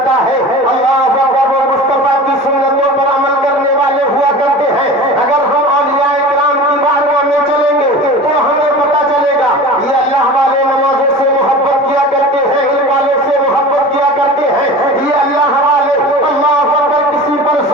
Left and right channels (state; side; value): normal; both; correlation 0.36